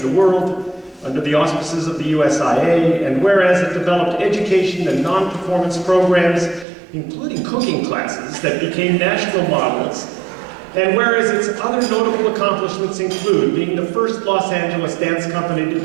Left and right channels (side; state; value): left; drops out; at 6.7 s